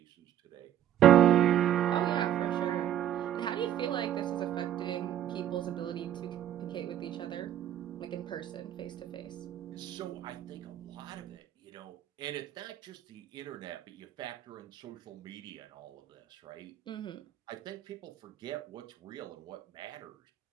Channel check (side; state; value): left; quieter; 11.2 dB